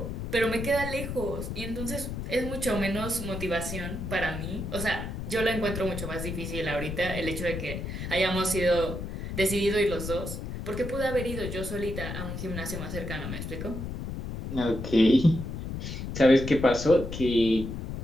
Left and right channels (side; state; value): left; noise; rumble, 6 dB below the sound